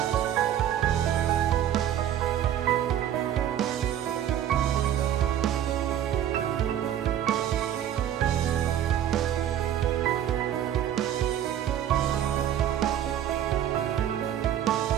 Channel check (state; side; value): quieter; left; 10.7 dB